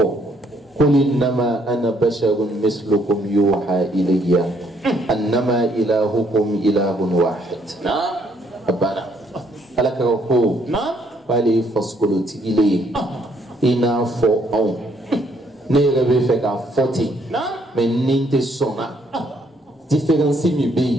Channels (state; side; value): normal; both; correlation 0.68